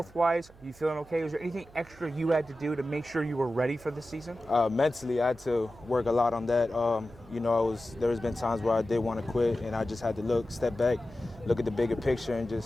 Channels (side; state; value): right; noise; hum, 24 dB below the sound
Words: are you feeling okay? Was there anything extra you had to do to make sure you were ready for this season? Mentally, I had to work a lot on that. There has been times where I did want to quit, and I just had to step back, look at the bigger picture, and